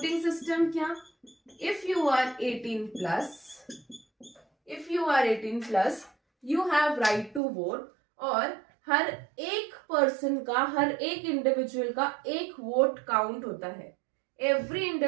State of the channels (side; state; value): left; drops out; at 7.4 s